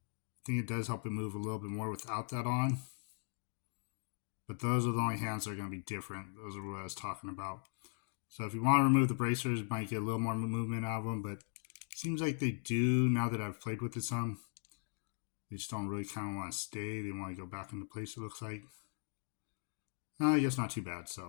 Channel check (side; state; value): right; silent; 52 dB below the other